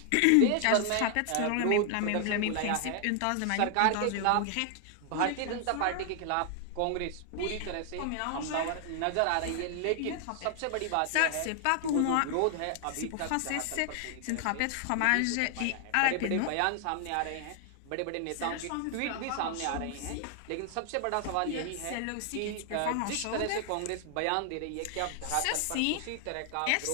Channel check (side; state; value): both; different; correlation 0.00